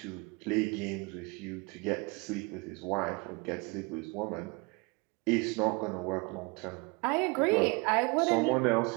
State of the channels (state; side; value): quieter; left; 28.4 dB